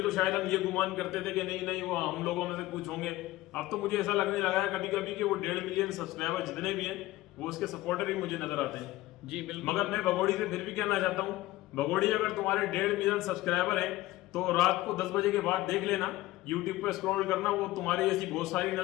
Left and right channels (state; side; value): quieter; right; 17.3 dB